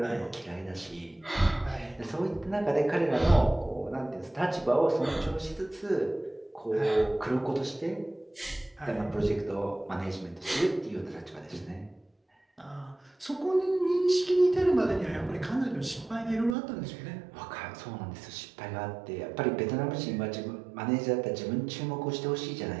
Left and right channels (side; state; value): left; drops out; at 16.6 s